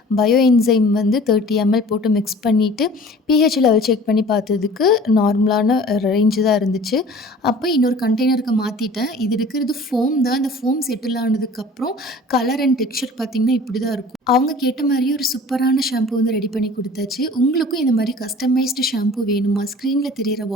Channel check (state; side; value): normal; both; correlation 0.46